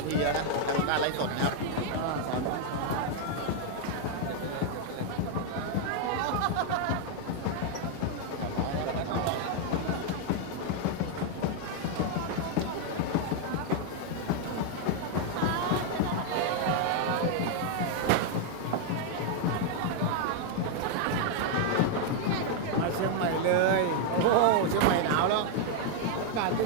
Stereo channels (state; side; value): different; both; correlation 0.00